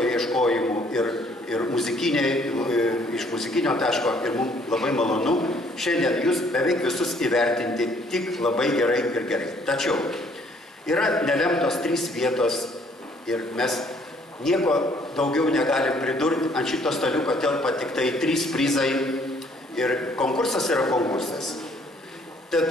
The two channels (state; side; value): normal; both; correlation 0.62